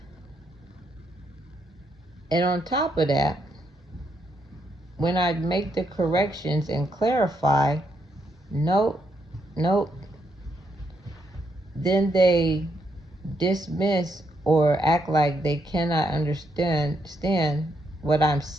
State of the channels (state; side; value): normal; both; correlation 0.77